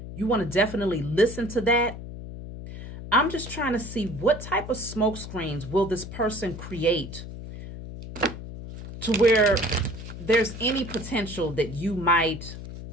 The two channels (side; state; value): left; noise; hum, 11 dB below the sound